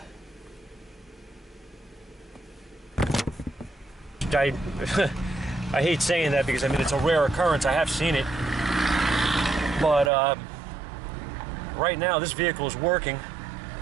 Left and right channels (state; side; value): drops out; left; at 10.1 s